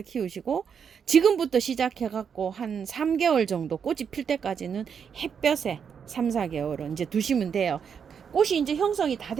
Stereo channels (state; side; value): quieter; left; 7.1 dB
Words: 키우시고 지금부터 시작해갖고 한 3개월 정도 꽃이 필 때까지는 햇볕에 3, 4개월은 이제 두시면 돼요. 꽃이 이제 형성이 다